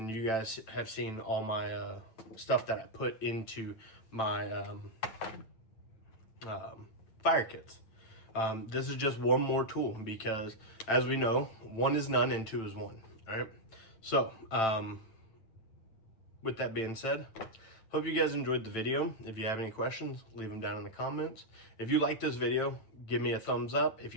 you guys have seen all my stuff that I put into my fire kits. This is just one more tool, because as we know, 1 is none and 2 is 1, all right? So with that being said, hope you guys enjoyed the video. If you have any questions, leave them down in the comments. If you liked this video, give me a thumbs up. If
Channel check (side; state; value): right; late; 9.0 ms